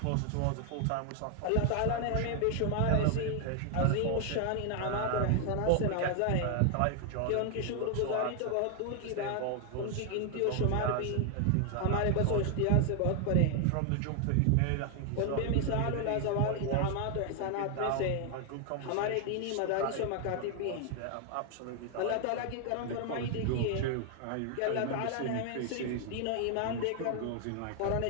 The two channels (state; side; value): different; both; correlation 0.00